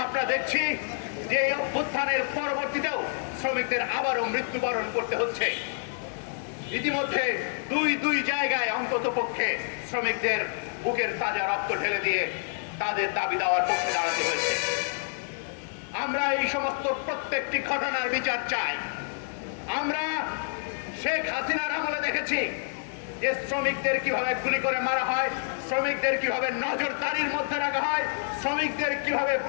আমরা দেখছি যে এই অভ্যুত্থানের পরবর্তীতেও শ্রমিকদের আবারও মৃত্যুবরণ করতে হচ্ছে। ইতিমধ্যে দুই জায়গায় অন্তত পক্ষে শ্রমিকদের বুকের তাজা রক্ত ঢেলে দিয়ে তাদের দাবি দেওয়ার পক্ষে দাঁড়াতে হয়েছে। আমরা এই সমস্ত প্রত্যেকটি ঘটনার বিচার চাই। আমরা শেখ হাসিনার আমলে দেখেছি যে শ্রমিকদের কিভাবে গুলি করে মারা হয়, শ্রমিকদের কিভাবে নজরদারির মধ্যে রাখা হয়, শ্রমিকদের কিভাবে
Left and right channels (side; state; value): right; silent; 59 dB below the other